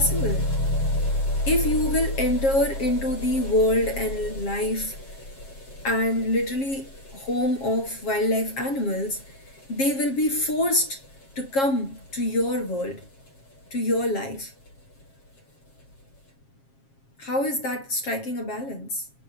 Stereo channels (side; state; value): right; late; 7.4 ms